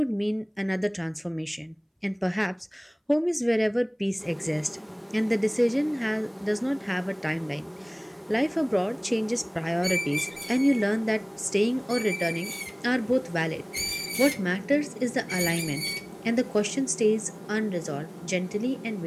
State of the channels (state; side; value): identical; both; correlation 1.00